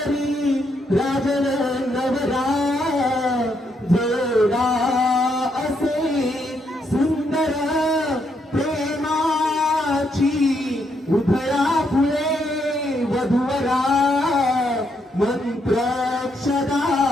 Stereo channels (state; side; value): normal; both; correlation 0.76